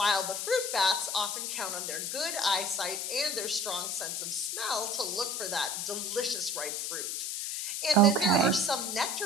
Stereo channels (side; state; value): left; noise; hiss, 2 dB below the sound